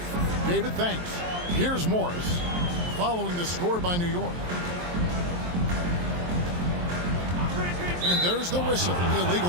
David, thanks. Here's Morris following the score by New York. And there's the whistle,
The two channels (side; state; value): left; late; 23 ms